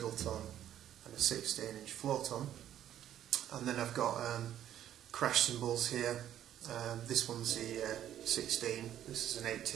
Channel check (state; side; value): quieter; left; 11.2 dB